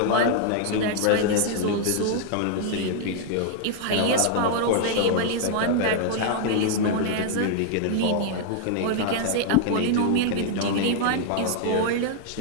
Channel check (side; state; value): both; different; correlation 0.00